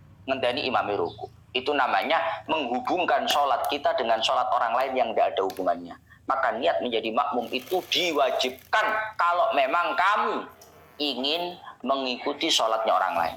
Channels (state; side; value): identical; both; correlation 1.00